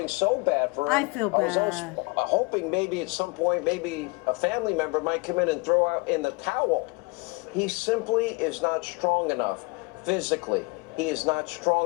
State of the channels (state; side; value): quieter; right; 27.8 dB